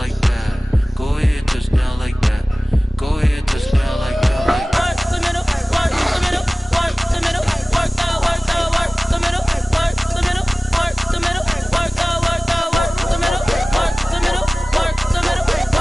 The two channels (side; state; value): both; normal; correlation 0.98